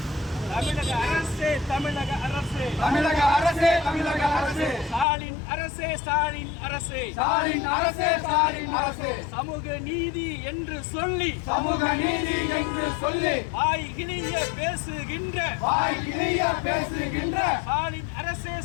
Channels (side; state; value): right; drops out; at 5.1 s